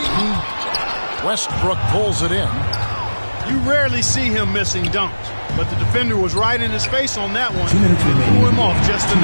Westbrook pulls it in. You rarely see him missing dunks, but the defender was right in his face on that one. Threw him off just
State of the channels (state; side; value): inverted; both; correlation -1.00